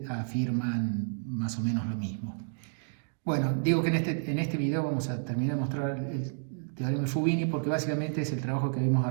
afirman más o menos lo mismo. Bueno, digo que en este video vamos a terminar de mostrar el teorema de Fubini porque básicamente es el trabajo que habíamos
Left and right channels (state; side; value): silent; left; digital silence